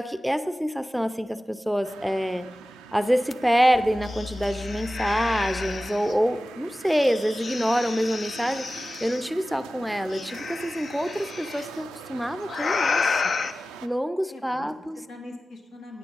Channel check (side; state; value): both; normal; correlation 0.95